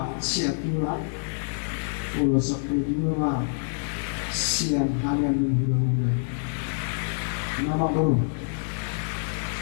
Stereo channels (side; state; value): right; silent; digital silence